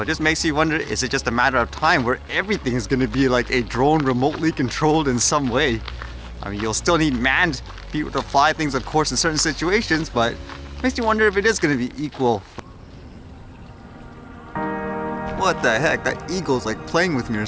it just makes you wonder, is it just a matter of time where everything is going to be like a drone remotely controlled in some way? I mean, you'll still need manned people to fly things, of course, in certain situations, but it makes you wonder if it is going to be equal. What the heck? That eagle's like playing with me or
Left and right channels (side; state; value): both; identical; correlation 1.00